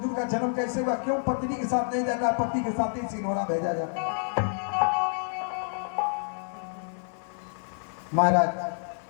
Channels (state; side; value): silent; right; digital silence